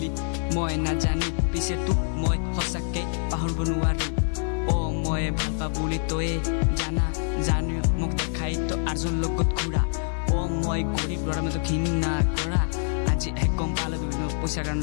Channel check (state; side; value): silent; right; digital silence